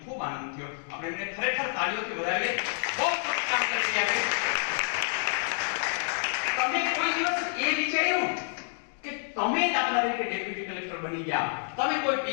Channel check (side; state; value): right; silent; 59 dB below the other